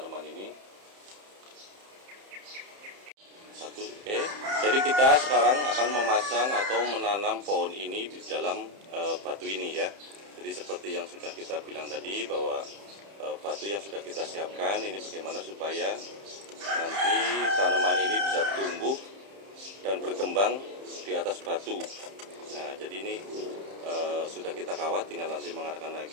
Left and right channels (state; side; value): late; left; 30 ms